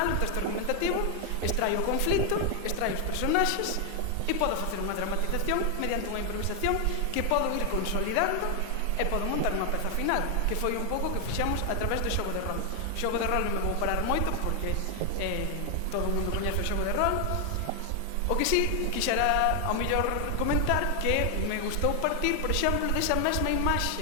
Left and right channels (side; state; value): both; different; correlation 0.00